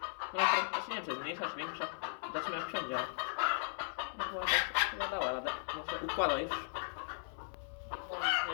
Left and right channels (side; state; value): right; silent; 53 dB below the other